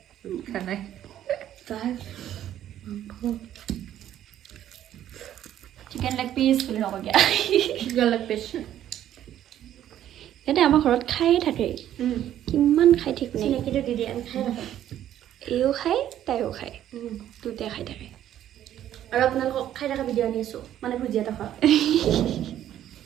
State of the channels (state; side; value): quieter; left; 11.5 dB